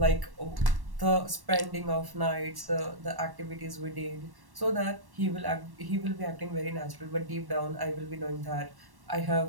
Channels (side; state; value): left; late; 1.1 ms